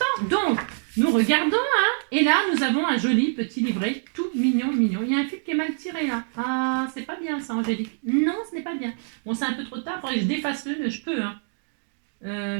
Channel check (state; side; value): silent; left; digital silence